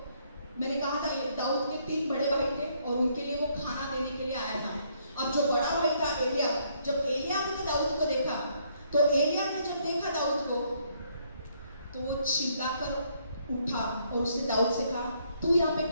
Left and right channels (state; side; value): inverted; both; correlation -0.69